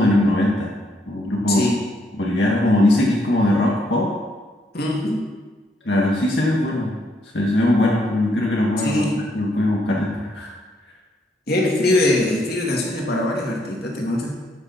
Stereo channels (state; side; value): normal; both; correlation 0.73